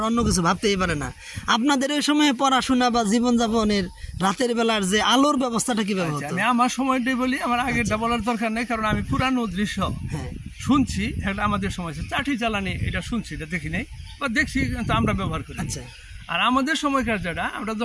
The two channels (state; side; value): identical; both; correlation 1.00